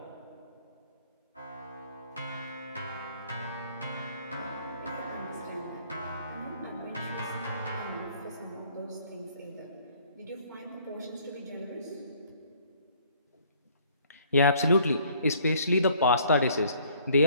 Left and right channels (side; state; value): both; inverted; correlation -0.59